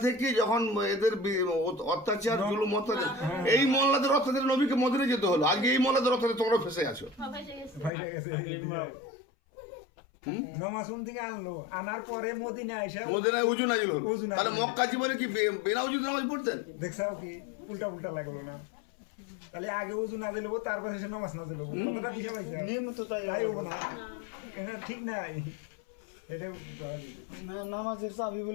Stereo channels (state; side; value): drops out; right; at 7.9 s